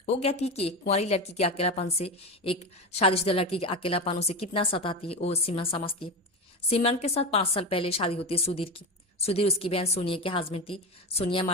वो कहती है कि एक कुंवारी लड़की के अकेलापन से एक शादीशुदा लड़की के अकेलापन उसे कितना सताती है वो सिमरन समझती है। सिमरन के साथ 5 साल पहले शादी होती है सुधीर की। सुधीर उसकी बहन सोनिया के हस्बैंड थी। सोनिया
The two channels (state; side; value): normal; both; correlation 0.20